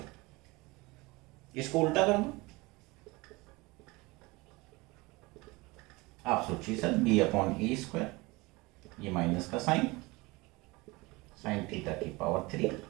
इसको उल्टा कर दो, आप सोचिए सर b/a², ये माइनस का sine, sin θ⁴।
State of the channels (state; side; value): quieter; left; 23.5 dB